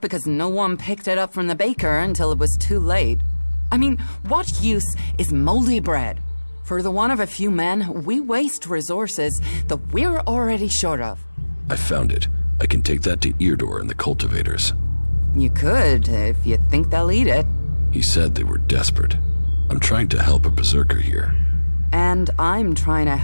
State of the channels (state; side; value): inverted; both; correlation -1.00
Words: because no one picked it up from the baker until it was too late. I mean, what use is moldy bread? For the want of a few men, we waste resources that we're already short of. I found it. I can take that to Eardor and the cultivators. You could, if you think they'll eat it. He said they were desperate. I'm trying to help a berserker here. And I'm trying to